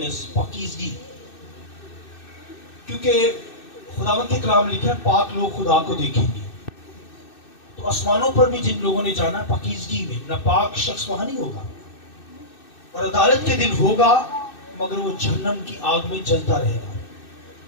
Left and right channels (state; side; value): late; right; 2.6 ms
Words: पाकीज़गी। क्योंकि खुदावंद के कलाम लिखा है, पाक लोग खुदा को देखेंगे। तो आसमानों पर भी जिन लोगों ने जाना पाकीज़गी में, नापाक शख्स वहां नहीं होगा, और अदालत के दिन होगा, मगर वो जहन्नम की आग में जलता रहेगा।